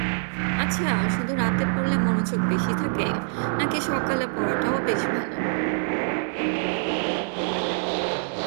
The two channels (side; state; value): left; silent; digital silence